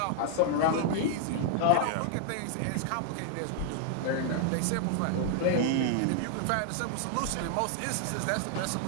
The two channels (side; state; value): both; different; correlation 0.00